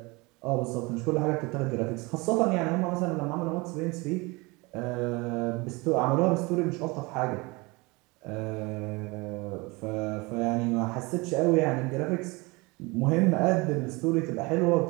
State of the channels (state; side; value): quieter; left; 25.2 dB